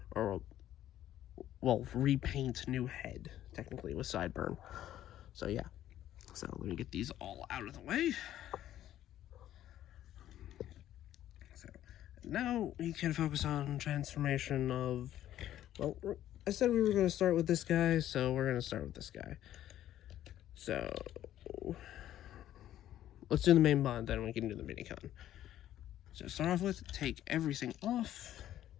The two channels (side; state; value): right; quieter; 12.4 dB